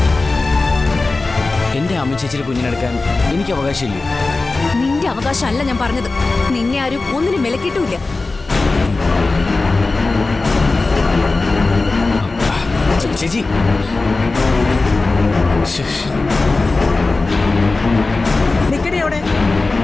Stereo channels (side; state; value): right; quieter; 3.5 dB